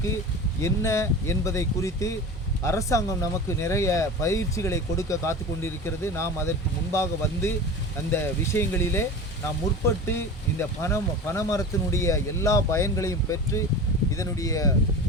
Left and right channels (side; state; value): both; normal; correlation 0.32